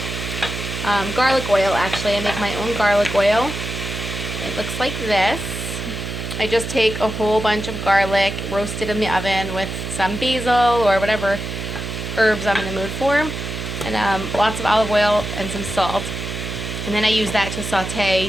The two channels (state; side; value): noise; right; hum, 6 dB below the sound